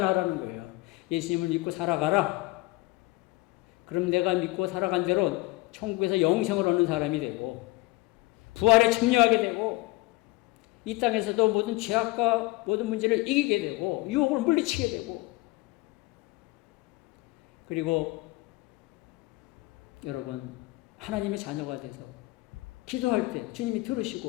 거예요. 예수님을 믿고 살아가라. 그럼 내가 믿고 살아간 대로 천국에서 영생을 얻는 사람이 되고, 부활에 참여하게 되고, 이 땅에서도 모든 죄악과 모든 문제를 이기게 되고, 유혹을 물리치게 되고, 그리고 여러분, 하나님의 자녀가 돼서 기도할 때 주님이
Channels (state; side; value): quieter; right; 21.2 dB